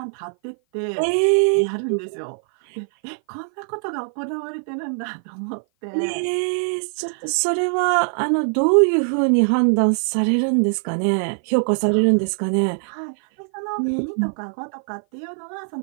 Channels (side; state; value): left; silent; 56 dB below the other